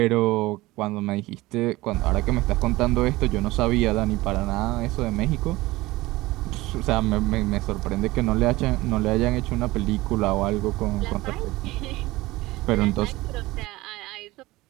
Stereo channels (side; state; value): left; quieter; 19.4 dB